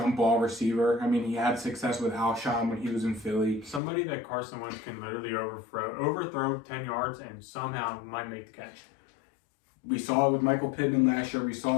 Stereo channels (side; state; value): right; drops out; at 3.8 s